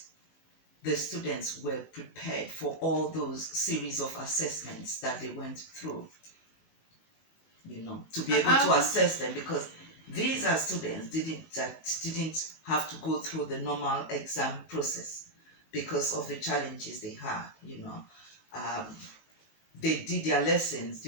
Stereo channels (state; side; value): late; right; 18 ms